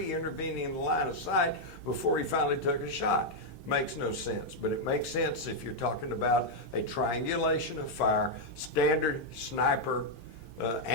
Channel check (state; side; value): late; left; 4.3 ms